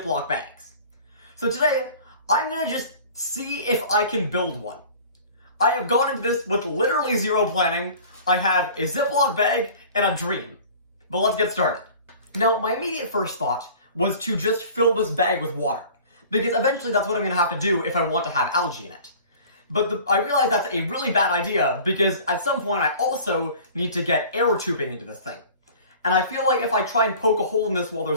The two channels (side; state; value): both; inverted; correlation -0.44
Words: bags. So today, I'm gonna just see if I can build one. I have gone into this with literally zero planning. I have a Ziploc bag and a dream. But let's get started. Now, my immediate first thought was to just fill this bag with water, because eventually that's what I'm gonna have to do if I want to have algae in it. But I realized that's a really bad idea, because at some point I also need to get air tubing into this thing. And I feel like if I try and poke a hole in this while